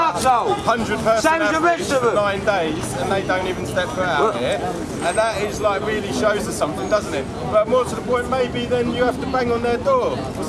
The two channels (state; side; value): identical; both; correlation 1.00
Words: 100 person Same as the rest of them. 9 days and they don't even step foot out here, and that is like really shows us something, doesn't it? But more to the point, maybe then you have to bang on their door or